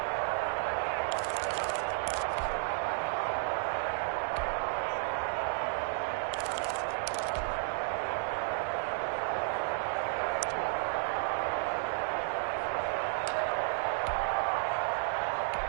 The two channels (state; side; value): silent; left; digital silence